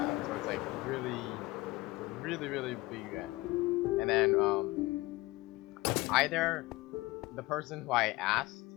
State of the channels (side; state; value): right; quieter; 20.9 dB